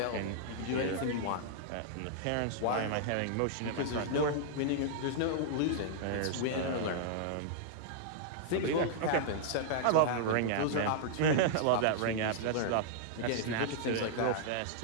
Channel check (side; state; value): both; different; correlation -0.01